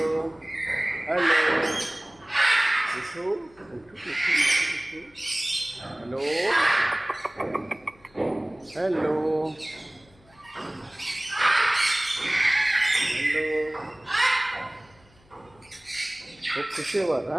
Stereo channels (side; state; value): left; noise; hum, 29 dB below the sound